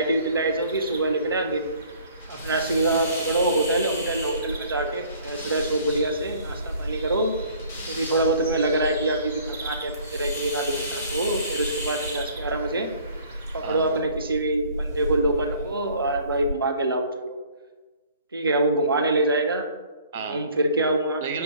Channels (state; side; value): inverted; both; correlation -0.54